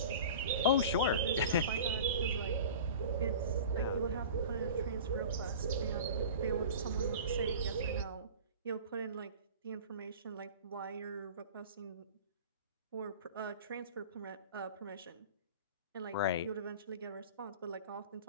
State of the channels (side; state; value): both; inverted; correlation -0.37